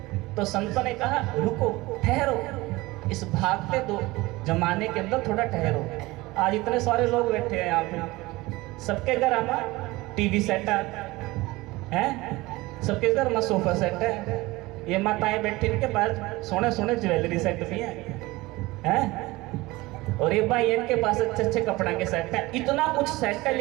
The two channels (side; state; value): left; quieter; 20.7 dB